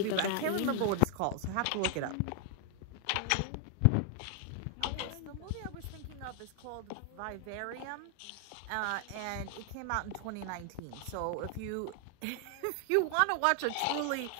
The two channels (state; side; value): different; both; correlation 0.00